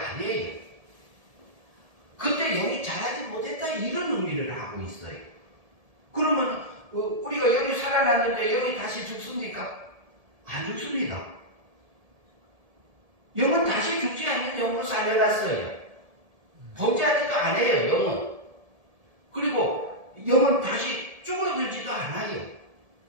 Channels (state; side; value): late; left; 1.7 ms